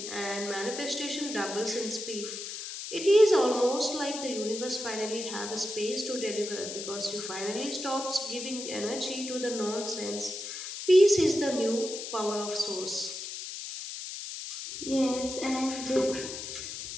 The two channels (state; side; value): noise; left; hiss, 7 dB below the sound